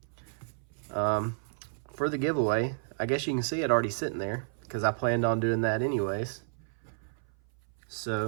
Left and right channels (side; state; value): left; silent; 56 dB below the other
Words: For the giveaway, I guess you can see it already sitting there because I planned on doing that anyways.